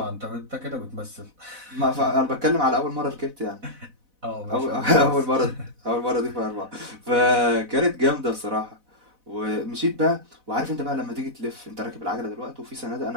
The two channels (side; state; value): left; late; 4.1 ms